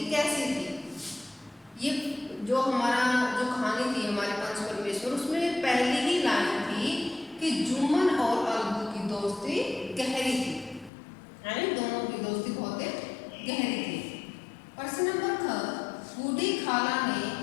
कैसी थी? ये जो कहानी थी हमारे पंच परमेश्वर, उसमें पहली ही लाइन थी कि जुम्मन और अलगू की दोस्ती गहरी थी, यानी दोनों की दोस्ती बहुत गहरी थी। प्रश्न नंबर ख, बूढ़ी खाला ने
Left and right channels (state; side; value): drops out; right; at 10.9 s